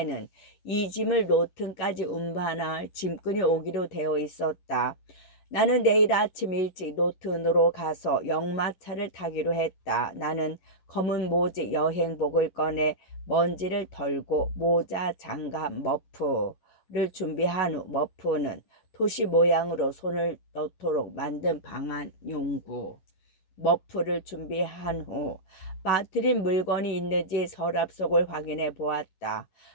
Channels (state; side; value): late; right; 11 ms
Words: 이 짐을 로튼까지 운반할 짐꾼이 오기로 되어 있었다. 나는 내일 아침 일찍 노튼으로 가서 역마차를 타기로 했다. 나는 검은 모직 여행복을 꺼내 먼지를 덜고 모자, 장갑, 머프를 준비한 후 머프는 토시 모양으로 손을 넣도록 만든 방안 용구. 머프를 준비한 후 빠뜨린 물건이 있는지 서랍 속을 확인해 보았다.